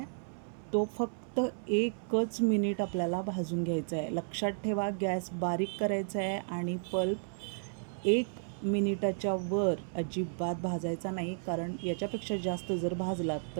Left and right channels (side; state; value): left; silent; 56 dB below the other